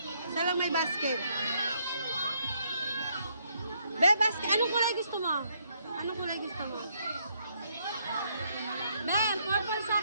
Isa lang may basket. Be, basket. Anong kulay gusto mo? Anong kulay gusto mo? Be, purple sa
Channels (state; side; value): inverted; both; correlation -0.72